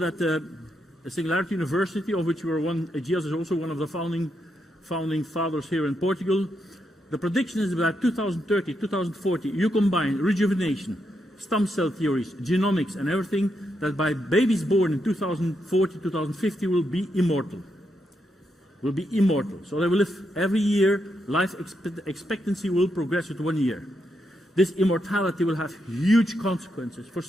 the Singularity University, of which we are one, AGEAS is also one of the founding fathers here in Portugal. The prediction is that 2030, 2040, you combine rejuvenation, stem cell theories, genomics and everything, that by babies born in 2040, 2050 will be immortal. Will be immortal. So they will live every year, life expectancy will progress with 1 year. This immortality will have huge consequences for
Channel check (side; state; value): both; normal; correlation 0.81